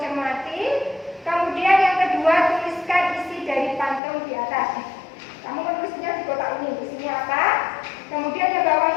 cermati. Kemudian yang kedua tuliskan isi dari pantun di atas. Kamu menulisnya di kotak ini. Isinya apa? Kemudian yang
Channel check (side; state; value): right; drops out; at 4.0 s